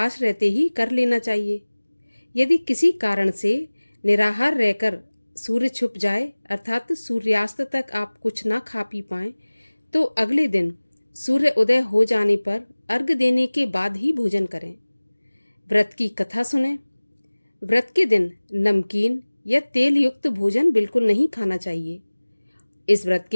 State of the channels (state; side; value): inverted; both; correlation -1.00